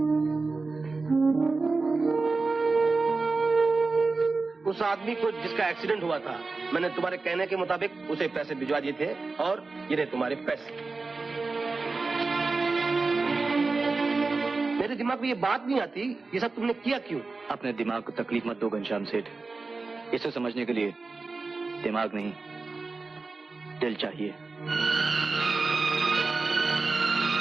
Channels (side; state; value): left; quieter; 3.9 dB